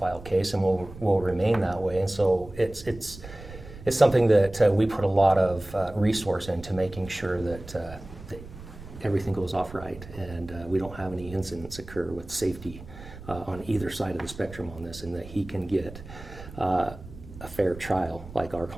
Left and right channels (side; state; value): right; noise; rumble, 15 dB below the sound